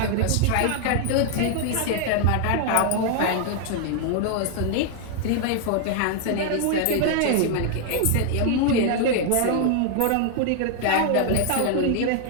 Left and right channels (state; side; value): different; both; correlation 0.00